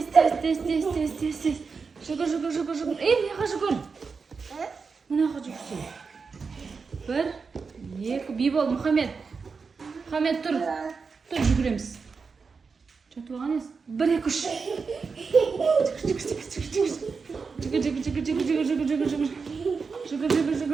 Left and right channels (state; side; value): quieter; left; 5.0 dB